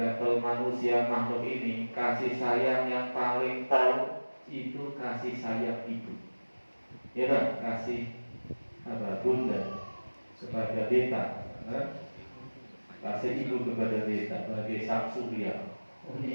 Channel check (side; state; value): both; inverted; correlation -1.00